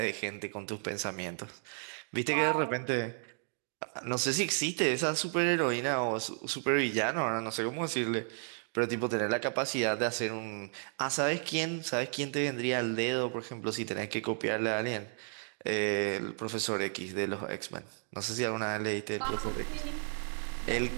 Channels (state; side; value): silent; left; 56 dB below the other